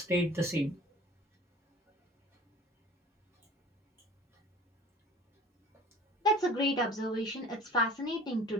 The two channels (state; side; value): normal; both; correlation 0.45